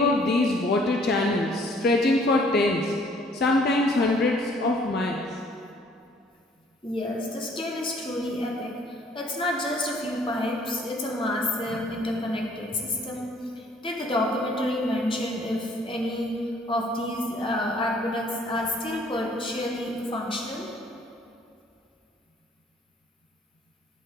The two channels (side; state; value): both; normal; correlation 0.60